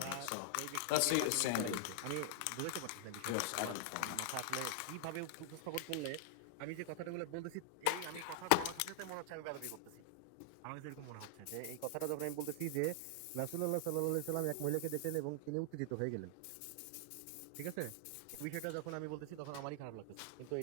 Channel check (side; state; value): both; different; correlation 0.00